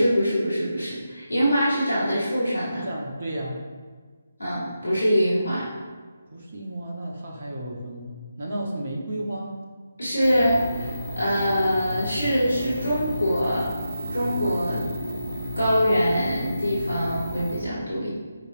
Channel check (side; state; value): both; inverted; correlation -0.88